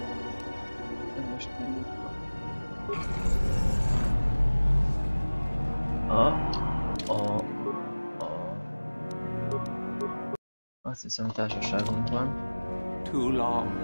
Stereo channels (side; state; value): both; inverted; correlation -1.00